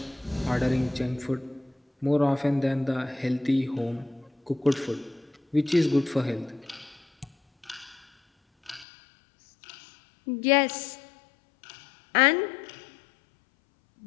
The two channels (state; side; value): drops out; right; at 8.8 s